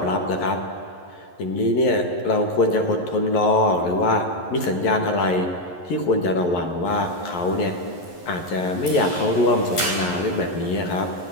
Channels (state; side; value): late; right; 11 ms